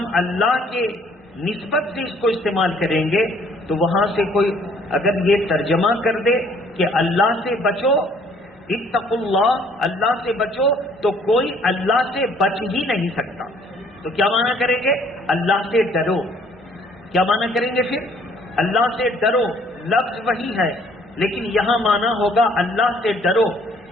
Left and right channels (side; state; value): both; normal; correlation 0.60